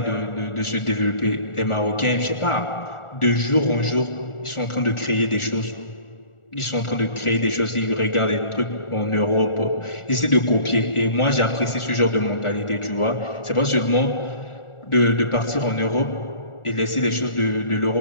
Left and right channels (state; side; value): late; right; 1.4 ms